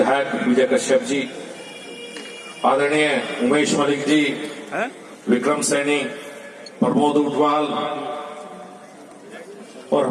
विजय कश्यप जी, आदरणीय उमेश मलिक जी, विक्रम सैनी, प्रमोद उटवाल और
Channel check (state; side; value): identical; both; correlation 1.00